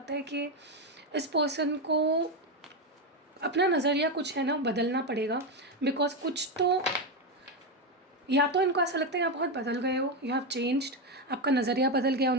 है कि इस पर्सन को अपना नज़रिया कुछ है ना बदलना पड़ेगा, बिकॉज कुछ तो, या तो इनको ऐसा लगता है कि आप बहुत बदल गए हो, यू हैव चेंज्ड, आपका नज़रिया बदल गया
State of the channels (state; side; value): normal; both; correlation 0.10